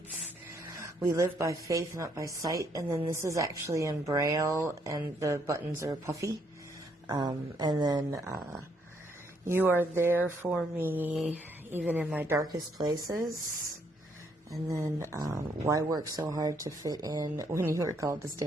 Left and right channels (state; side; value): normal; both; correlation 0.71